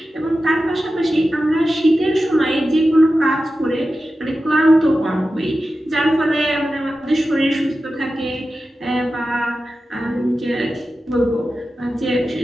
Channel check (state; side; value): normal; both; correlation 0.93